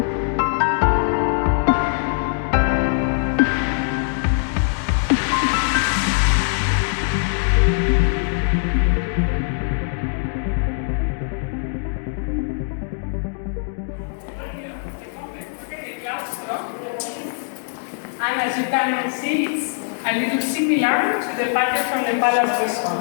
And as you can see, it's a little similar to the pattern from the Palace Resort.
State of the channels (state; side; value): silent; right; digital silence